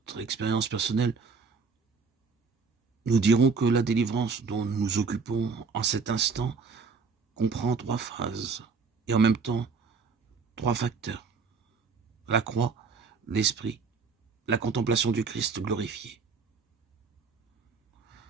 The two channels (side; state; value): left; quieter; 4.9 dB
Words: expérience personnelle, nous dirons que la délivrance dont nous nous occupons en cet instant comprend 3 phases et en même temps 3 facteurs. La croix, l'esprit, la contemplation du Christ glorifié.